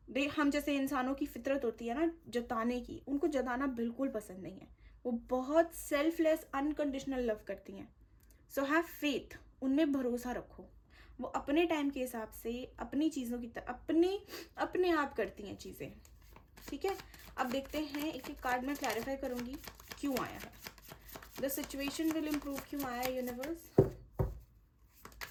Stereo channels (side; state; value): both; identical; correlation 1.00